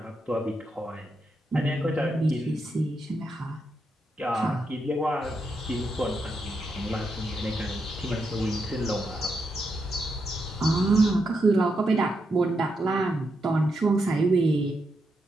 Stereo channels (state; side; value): normal; both; correlation 0.83